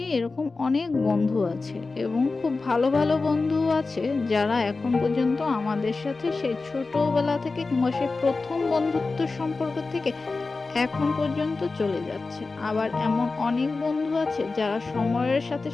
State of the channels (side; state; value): right; quieter; 3.8 dB